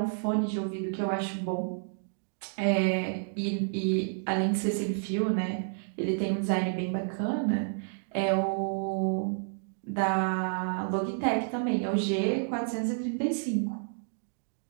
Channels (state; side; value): silent; left; digital silence